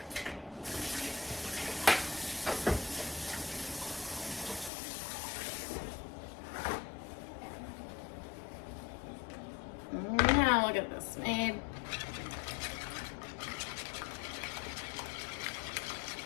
Now look at this made.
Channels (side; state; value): right; drops out; at 4.7 s